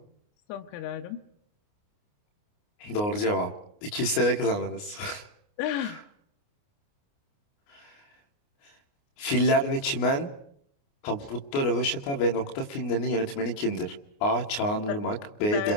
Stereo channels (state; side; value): late; right; 29 ms